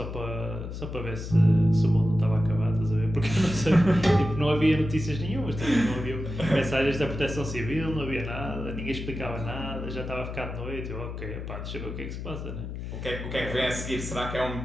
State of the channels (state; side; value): noise; left; hum, 7 dB below the sound